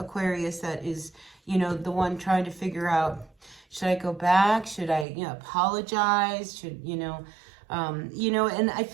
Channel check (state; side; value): drops out; left; at 5.1 s